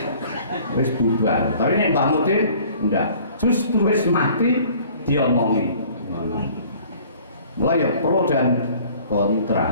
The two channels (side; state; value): both; inverted; correlation -0.52